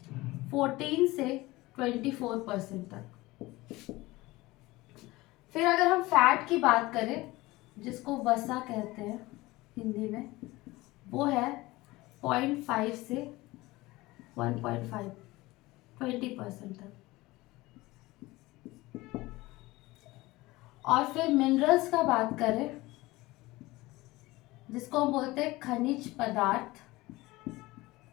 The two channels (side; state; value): right; quieter; 20.0 dB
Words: 14 से 24% तक। फिर अगर हम फैट की बात करें, जिसको वसा कहते हैं हिंदी में, वो है 0.5 से 1.5, 20% तक। और फिर मिनरल्स का बात करें, जिसको हम बोलते हैं खनिज पदार्थ,